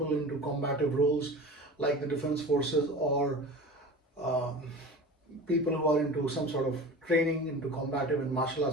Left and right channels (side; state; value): both; normal; correlation 0.35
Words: into combative roles like the defense forces, or people who are into some sort of training, into combative and martial